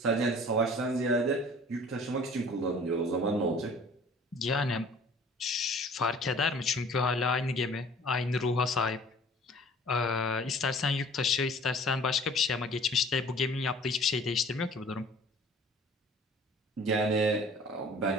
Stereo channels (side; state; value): both; normal; correlation 0.49